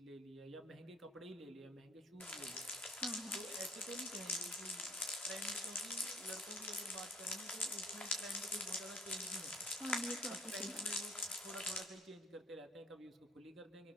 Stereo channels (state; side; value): normal; both; correlation 0.54